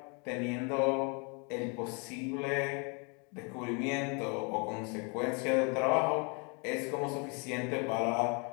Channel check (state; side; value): quieter; right; 33.5 dB